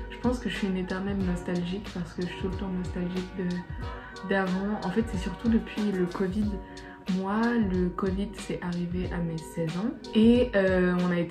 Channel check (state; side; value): identical; both; correlation 1.00